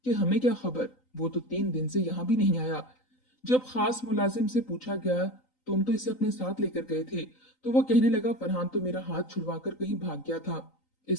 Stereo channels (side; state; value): right; late; 3.9 ms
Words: कि हमें क्या खबर, वो तो 3 दिन से यहाँ भी नहीं आया। जब खास मुलाजिम से पूछा गया, तुम तो इसे अपने साथ लेकर गए थे, तो वो कहने लगा, फरहान तो मेरा हाथ छुड़वाकर कहीं भाग गया था।